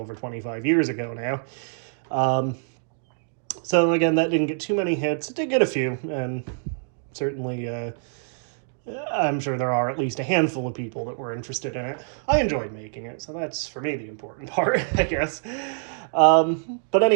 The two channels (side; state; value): left; silent; digital silence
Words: 25 years ago now. So again, that didn't get too many hits. It did get a few, and certainly I'm sure there are at least a handful of people that were interested in it. I enjoyed making it, so that's for me the important part, I guess. But